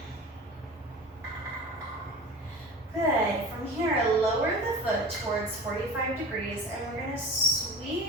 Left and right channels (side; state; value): both; normal; correlation 0.38